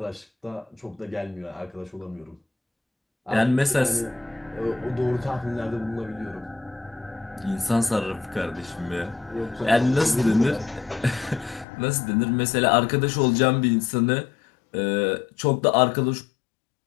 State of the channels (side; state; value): right; drops out; at 11.7 s